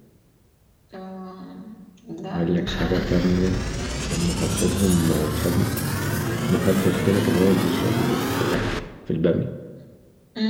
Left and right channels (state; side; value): identical; both; correlation 1.00